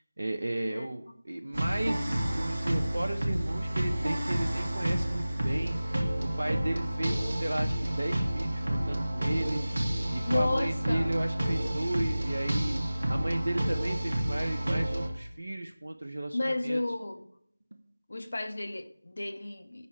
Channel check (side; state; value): both; inverted; correlation -0.97